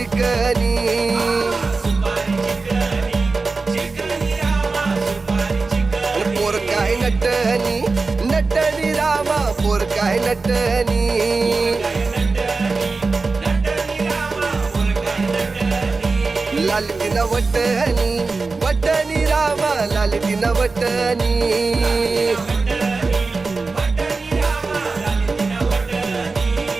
पोर काय नटनी नटनी रामा पोर काय नटनी लाल तिना वटनी वटनी रामा लाल तिना वटनी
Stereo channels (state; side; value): quieter; left; 4.0 dB